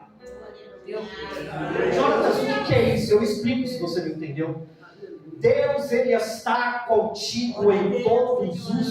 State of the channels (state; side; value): identical; both; correlation 1.00